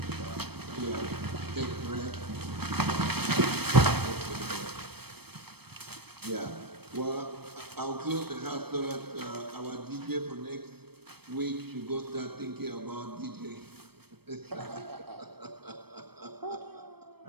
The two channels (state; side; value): late; left; 0.97 ms